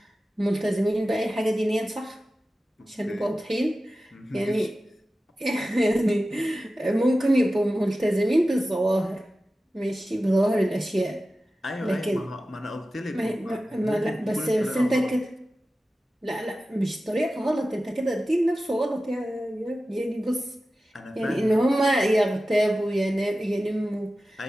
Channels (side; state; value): both; normal; correlation 0.95